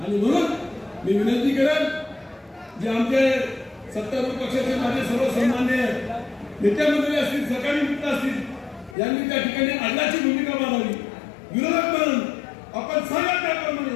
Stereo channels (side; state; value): right; drops out; at 9.0 s